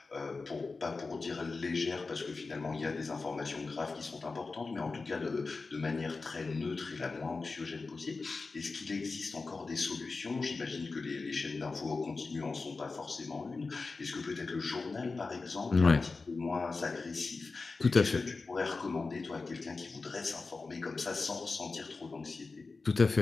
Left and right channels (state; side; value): quieter; right; 4.0 dB